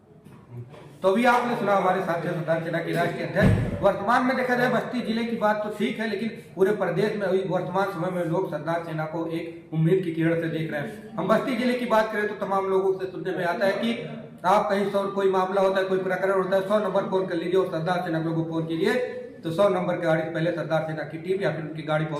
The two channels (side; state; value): both; identical; correlation 1.00